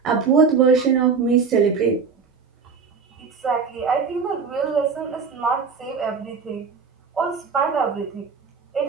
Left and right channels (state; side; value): quieter; left; 5.4 dB